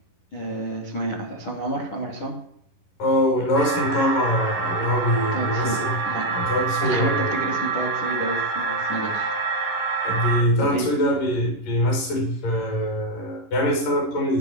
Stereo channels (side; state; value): right; late; 11 ms